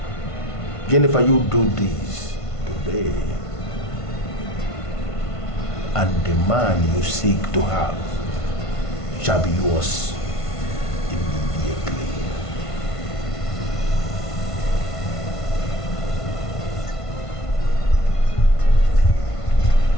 Jennifer, you do this today, and the man you seek to have shall be yours immediately.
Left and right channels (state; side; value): late; right; 1.5 ms